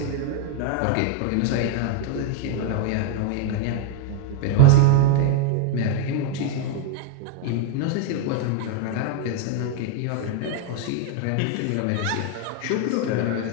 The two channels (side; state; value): both; different; correlation 0.01